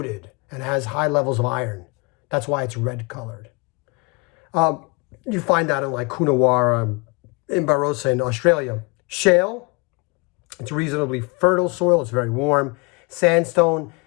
and has high levels of iron. That's why it's red colored. You find that in like Coonawarra, in Barossa in Australia. Shale, it's reasonably fertile soil. It's very warm. Sandstone,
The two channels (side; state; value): right; quieter; 29.5 dB